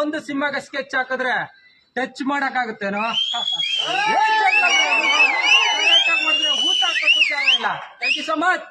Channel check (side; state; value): both; identical; correlation 1.00